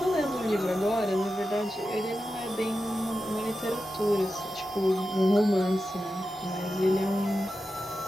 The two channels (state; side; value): normal; both; correlation 0.91